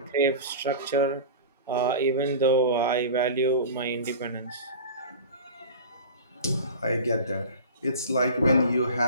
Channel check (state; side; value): inverted; both; correlation -0.34